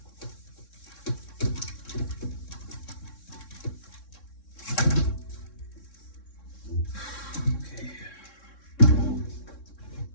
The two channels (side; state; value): right; late; 3.6 ms